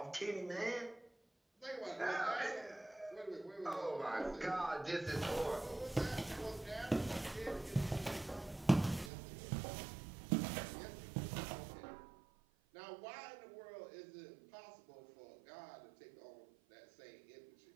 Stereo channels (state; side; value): drops out; left; at 9.1 s